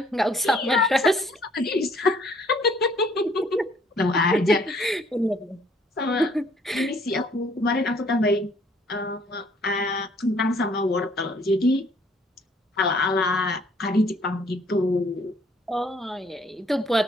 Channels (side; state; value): both; normal; correlation 0.62